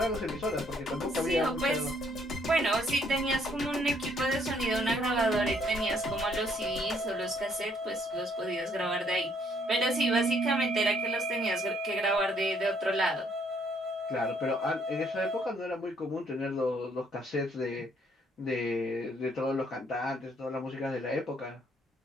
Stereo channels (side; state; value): both; normal; correlation 0.67